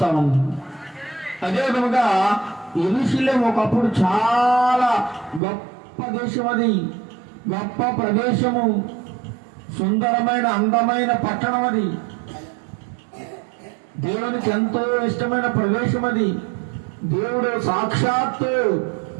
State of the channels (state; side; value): drops out; left; at 5.4 s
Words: ఉంది. అదే విధముగా యెరూషలేము ఒకప్పుడు చాలా గొప్ప దేశం, అది గొప్ప ప్రదేశము, సుందరమైన అందమైన పట్టణం, అది దేవునికి ఎంతో ఇష్టమైన ప్రదేశం. అది దేవుడు సాక్షాత్తు